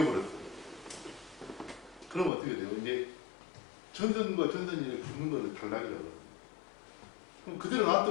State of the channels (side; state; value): right; drops out; at 2.3 s